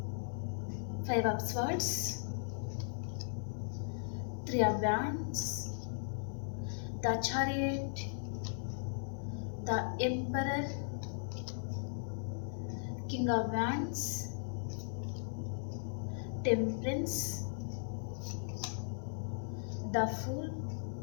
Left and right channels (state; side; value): silent; right; digital silence